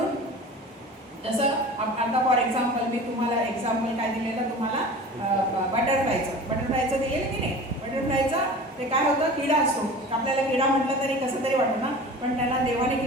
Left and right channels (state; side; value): normal; both; correlation 0.38